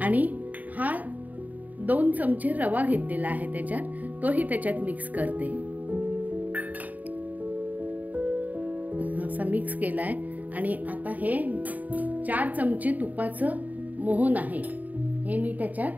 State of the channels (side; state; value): left; late; 0.077 ms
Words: आणि हा 2 चमचे रवा घेतलेला आहे त्याच्यात, तोही त्याच्यात मिक्स करते. असा मिक्स केलाय आणि आता हे 4 चमचे तुपाचं मोहन आहे, हे मी